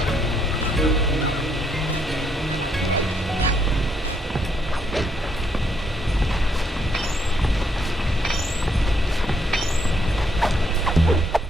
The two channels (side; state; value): both; normal; correlation 0.73